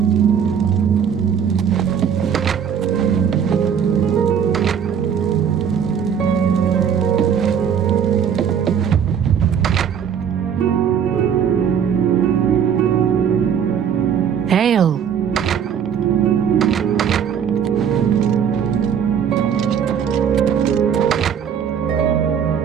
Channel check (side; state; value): left; quieter; 8.0 dB